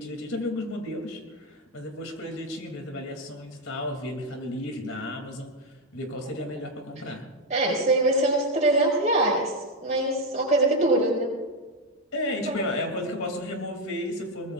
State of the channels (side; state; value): both; normal; correlation 0.06